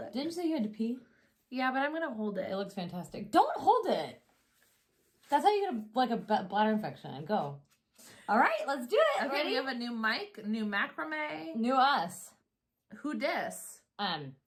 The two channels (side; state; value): both; identical; correlation 1.00